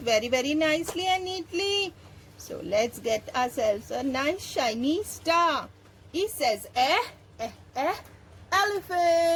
very nicely and neatly. So let's get ourselves a nice shiny star. E says eh, eh, eh,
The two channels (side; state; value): both; identical; correlation 1.00